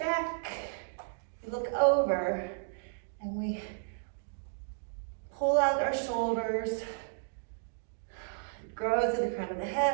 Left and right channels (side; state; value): left; silent; digital silence